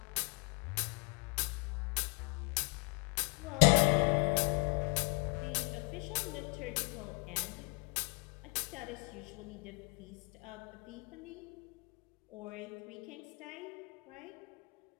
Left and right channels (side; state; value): right; quieter; 32.9 dB